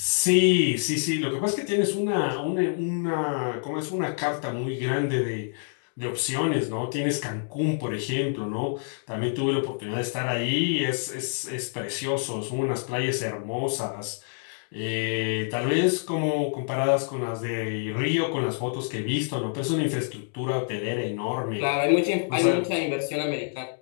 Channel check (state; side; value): silent; right; digital silence